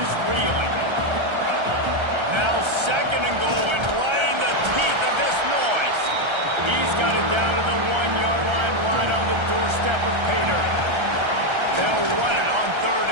reeling. Now 2nd and goal, and right in the teeth of this noise. He's got it down to the 1-yard line, right on the doorstep of Pater. They'll run it on 3rd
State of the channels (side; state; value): left; late; 1.3 ms